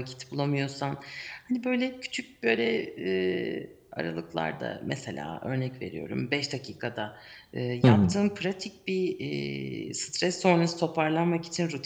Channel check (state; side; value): identical; both; correlation 1.00